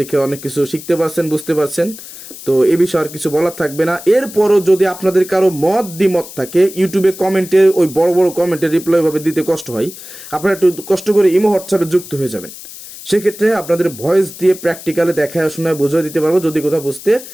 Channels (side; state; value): left; noise; hiss, 15 dB below the sound